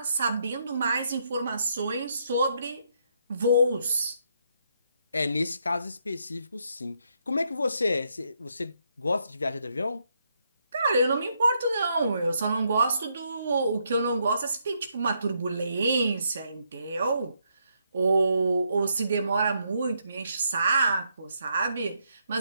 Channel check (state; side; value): inverted; both; correlation -0.76